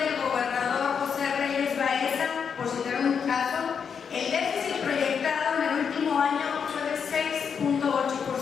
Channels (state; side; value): quieter; right; 6.7 dB